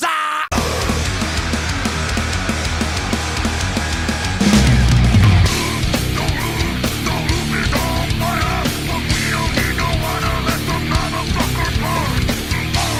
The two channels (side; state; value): both; identical; correlation 1.00